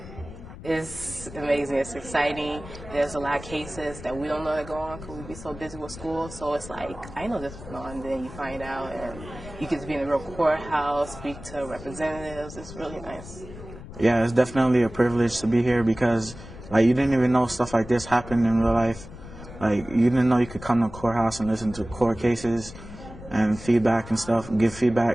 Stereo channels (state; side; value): noise; left; rumble, 15 dB below the sound